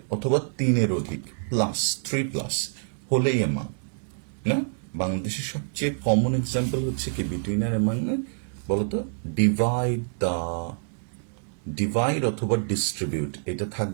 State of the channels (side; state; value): left; silent; digital silence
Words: অথবা 3-এর অধিক প্লাস 3+ হলেই অ্যামাং। না, বাংলাদেশের সবচেয়ে কমন এক্সাম্পল হচ্ছে কি বিটুইন আর অ্যামাং, না বলতো, ডিভাইড অথবা ডিস্ট্রিবিউট, এটা